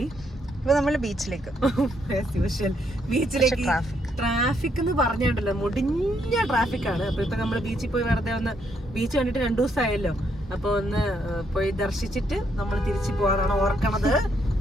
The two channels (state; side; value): normal; both; correlation 0.74